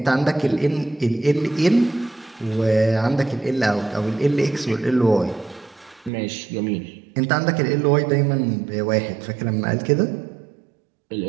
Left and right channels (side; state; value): left; drops out; at 6.1 s